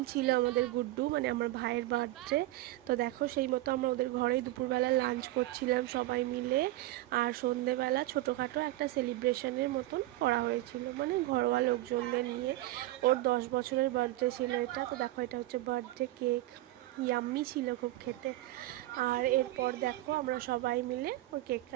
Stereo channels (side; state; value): left; quieter; 17.0 dB